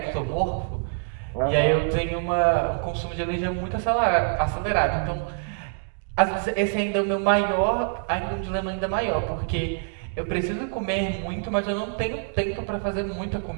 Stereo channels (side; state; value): left; silent; 61 dB below the other